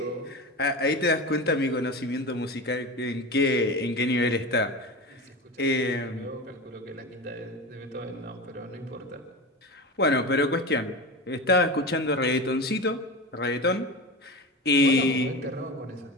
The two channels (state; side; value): normal; both; correlation 0.26